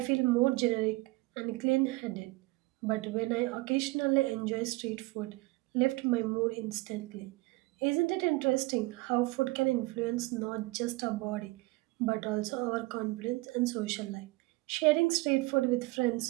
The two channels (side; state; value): left; quieter; 22.3 dB